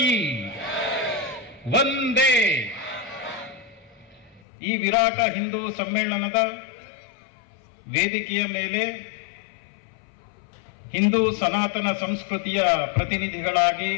ವಂದೇ. ಈ ವಿರಾಟ ಹಿಂದೂ ಸಮ್ಮೇಳನದ ವೇದಿಕೆಯ ಮೇಲೆ ಹಿಂದೂ ಸನಾತನ ಸಂಸ್ಕೃತಿಯ ಪ್ರತಿನಿಧಿಗಳಾಗಿ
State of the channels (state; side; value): drops out; right; at 4.4 s